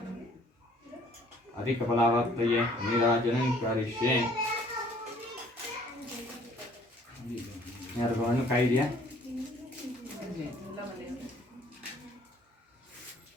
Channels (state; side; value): normal; both; correlation 0.58